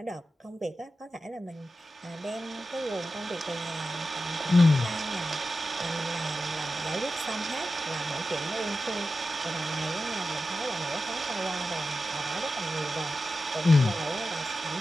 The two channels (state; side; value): normal; both; correlation 0.92